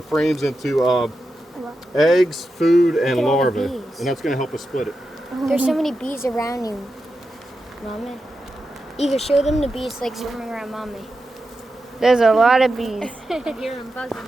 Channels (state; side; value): normal; both; correlation 0.89